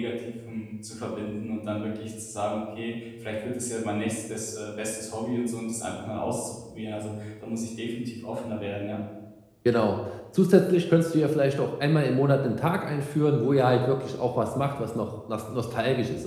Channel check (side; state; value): both; identical; correlation 1.00